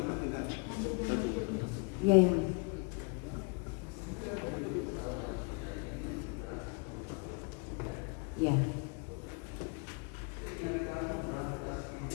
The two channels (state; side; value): quieter; right; 33.3 dB